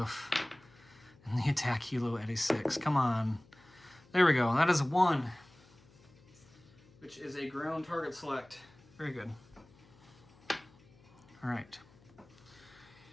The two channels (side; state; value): left; noise; hum, 27 dB below the sound